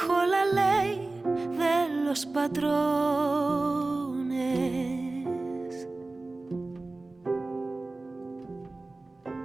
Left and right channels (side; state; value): left; quieter; 3.2 dB